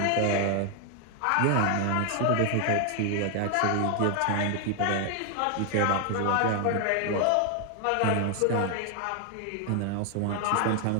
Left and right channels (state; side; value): different; both; correlation 0.00